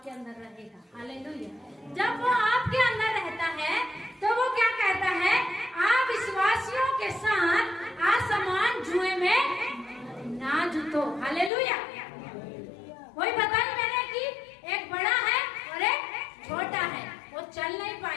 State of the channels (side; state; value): right; drops out; at 11.5 s